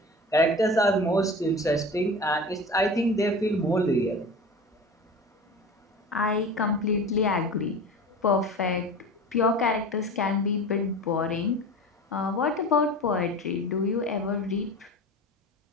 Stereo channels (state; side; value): normal; both; correlation 0.34